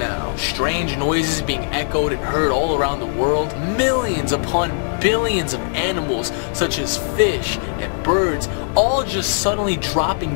Strange noises being echoed and heard all around the world, millions upon billions of animals such as fish and birds all just suddenly dropping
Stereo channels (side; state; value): right; silent; 65 dB below the other